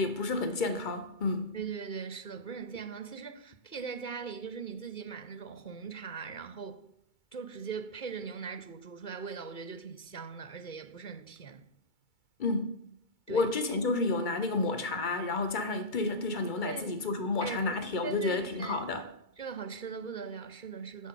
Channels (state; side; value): late; right; 2.3 ms